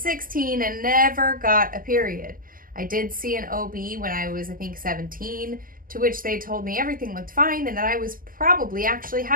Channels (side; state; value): left; late; 0.41 ms